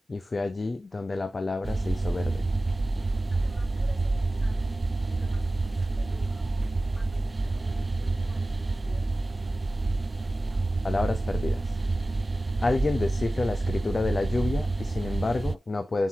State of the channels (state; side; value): normal; both; correlation 0.95